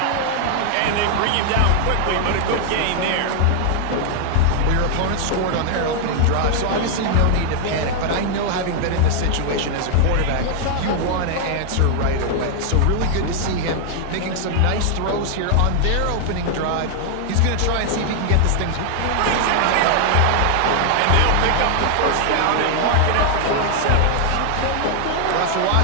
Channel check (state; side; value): different; both; correlation 0.00